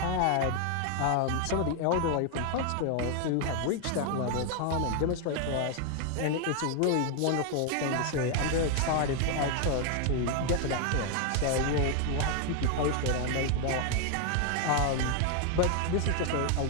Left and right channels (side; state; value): both; different; correlation 0.01